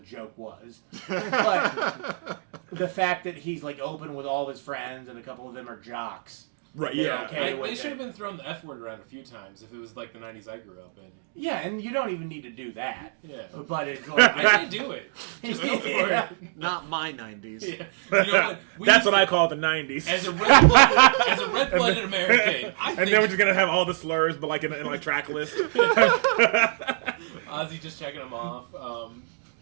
joke was, but the fact that he's like open with all of his friends and a couple of them are jocks. Right, They're yeah. okay with They it. should have been throwing the F word around a few times if it was like the 90s I grew up in. Yeah, and you don't even need to do that. Yeah. But it's like I say do it. Just go for Yeah. it. Not my 90s. Yeah. You know what? That's used what to- I call the '90s. As a red-blooded American, I and then we're think just gonna have all the slurs, but like in like track list. Ozzy just checking them off.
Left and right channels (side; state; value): left; silent; digital silence